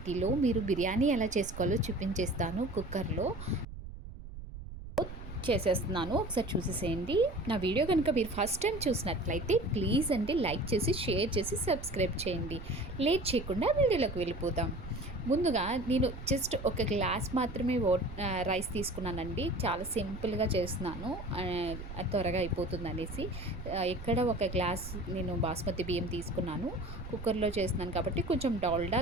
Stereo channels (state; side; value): noise; right; rumble, 12 dB below the sound